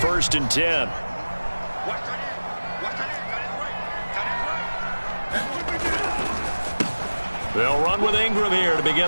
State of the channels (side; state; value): both; inverted; correlation -1.00